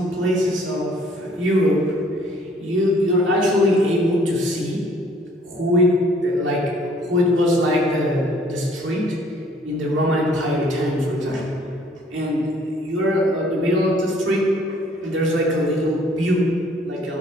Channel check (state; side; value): normal; both; correlation 0.59